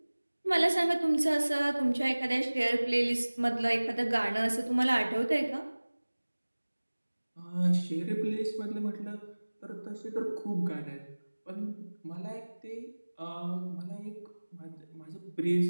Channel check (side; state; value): both; inverted; correlation -1.00